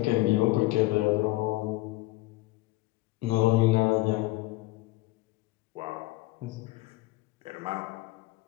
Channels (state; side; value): quieter; right; 19.3 dB